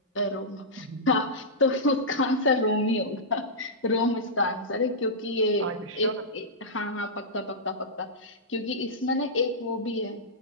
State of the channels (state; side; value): normal; both; correlation -0.13